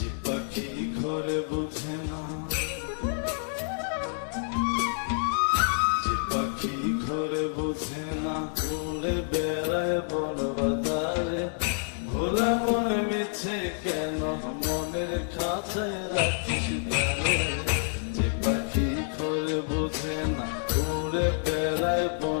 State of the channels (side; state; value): right; silent; digital silence